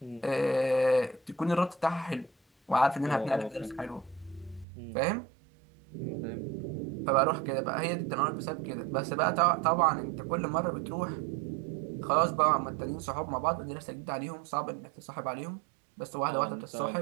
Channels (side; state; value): left; drops out; at 4.7 s